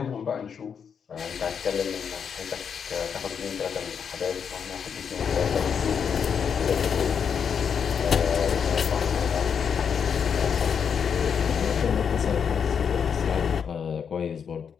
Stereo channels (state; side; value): quieter; right; 7.0 dB